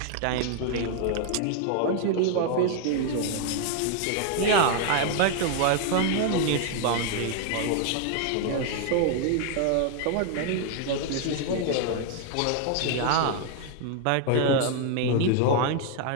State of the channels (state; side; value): different; both; correlation 0.00